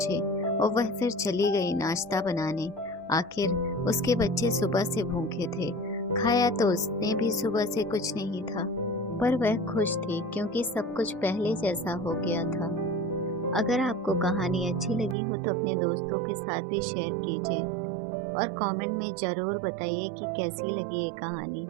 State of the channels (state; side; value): drops out; left; at 15.2 s